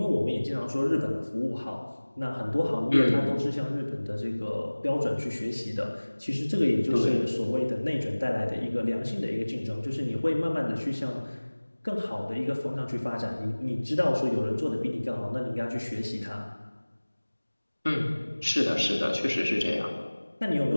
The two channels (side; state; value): both; inverted; correlation -1.00